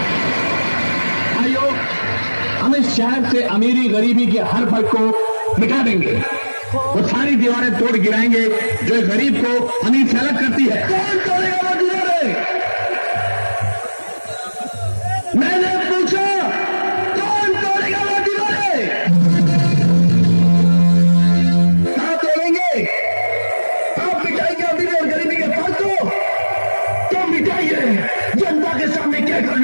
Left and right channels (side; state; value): both; inverted; correlation -1.00